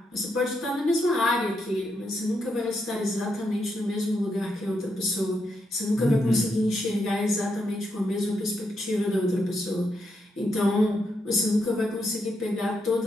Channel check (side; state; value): both; normal; correlation 0.81